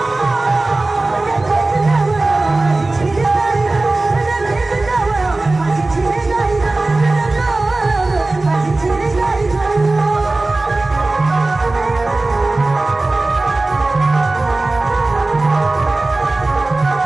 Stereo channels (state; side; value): quieter; left; 3.1 dB